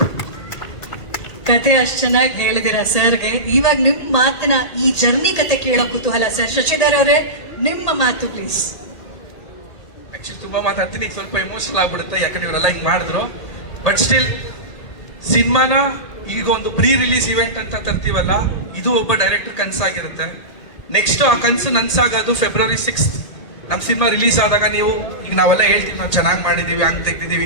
ಕತೆ ಅಷ್ಟು ಚೆನ್ನಾಗಿ ಹೇಳಿದಿರಾ ಸರ್ಗೆ. ಇವಾಗ ನಿಮ್ಮ ಮಾತನ್ನ, ಈ ಜರ್ನಿ ಕತೆ ಕೇಳೋ ಕುತೂಹಲ ಸರ್. ಶಶಿಧರ್ ಅವರೇ, ನಿಮ್ಮ ಮಾತು ಪ್ಲೀಸ್. ಆಕ್ಚುಲಿ ತುಂಬಾ ಮಾತಾಡ್ತೀನಿ, ಈಗ ಸ್ವಲ್ಪ ಎಮೋಷನಲ್ ಆಗ್ಬಿಡುತ್ತೆ, ಯಾಕಂದ್ರೆ ಇವರೆಲ್ಲ ಹಿಂಗ್ ಮಾಡಿದ್ರು. ಬಟ್ ಸ್ಟಿಲ್ ಸಿನಿಮಾನ ಈಗ ಒಂದು ಪ್ರೀ ರಿಲೀಸ್ ಇವೆಂಟ್ ಅಂತ ತರ್ತೀವಲ್ಲ, ಇದು ಒಬ್ಬ ಡೈರೆಕ್ಟರ್ ಕನಸಾಗಿರುತ್ತೆ. ನೆಕ್ಸ್ಟ್ ಆ ಕನಸು ನನ್ಸಾಗೋದು ಫೆಬ್ರವರಿ 6 ನಮ್ಮ ಸಿನಿಮಾ ರಿಲೀಸ್ ಆದಾಗ ನೀವು ಈಗ ನಾವೆಲ್ಲ ಹೇಳ್ತೀವಿ ನಾವು ಚೆನ್ನಾಗಿ ಮಾಡಿದೀವಿ, ಹಂಗೆ ತೆಗ್ದಿದೀವಿ,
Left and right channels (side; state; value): right; late; 1.8 ms